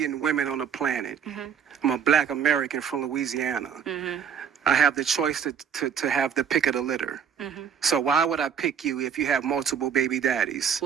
women on the planet. I'm a Black American from Louisiana. I have the choice to have the pick of the litter. So why would I pick you if you have multiple baby daddies?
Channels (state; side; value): quieter; left; 7.7 dB